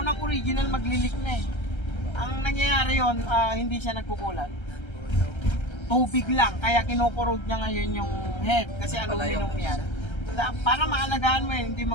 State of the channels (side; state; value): right; late; 1.3 ms